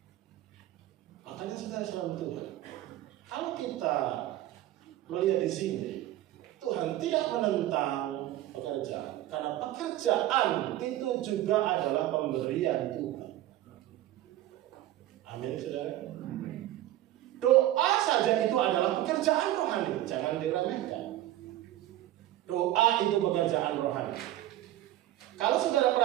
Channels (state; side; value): quieter; left; 14.3 dB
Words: Makanya saudara selalu Tuhan. Kalau kita melihat di sini, Tuhan tidak menentang pekerjaan, karena pekerjaan itu juga adalah pemberian Tuhan. Amin, saudara. Doa saja itu adalah pekerjaan rohani, jangan diremehkan. Doa itu pekerjaan rohani. Kalau saudara